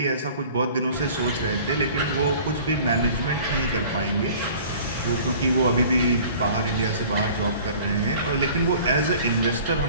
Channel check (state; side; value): inverted; both; correlation -0.47